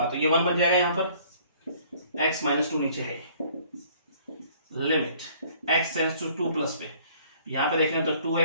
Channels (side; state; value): both; inverted; correlation -0.57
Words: तो ये 1 बन जाएगा, यहां पर x माइनस 2 नीचे है, limit x tends to 2 plus पे, यहां पे देखें तो